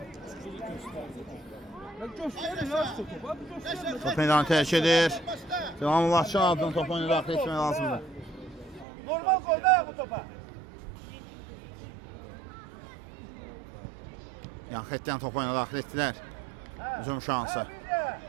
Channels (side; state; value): left; drops out; at 8.8 s